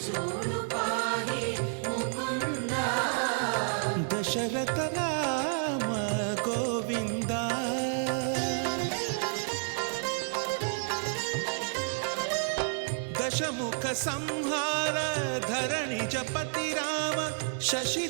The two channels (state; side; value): silent; left; 58 dB below the other